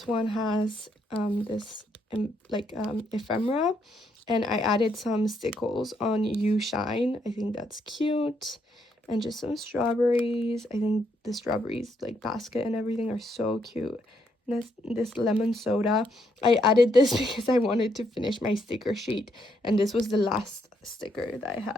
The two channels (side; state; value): both; normal; correlation 0.75